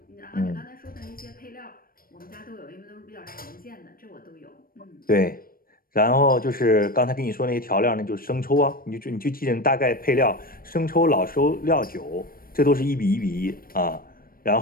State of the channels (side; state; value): right; late; 0.42 ms